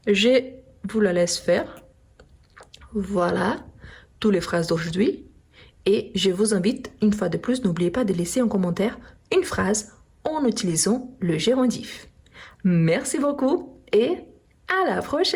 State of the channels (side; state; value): both; identical; correlation 1.00